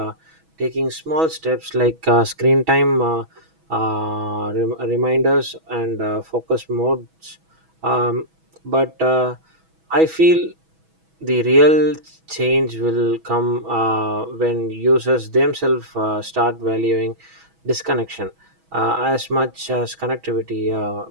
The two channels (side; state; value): left; late; 6.1 ms